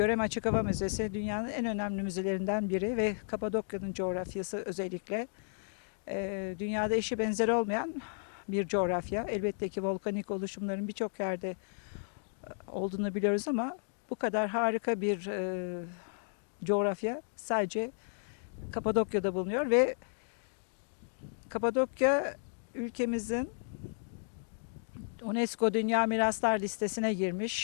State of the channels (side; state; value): right; silent; digital silence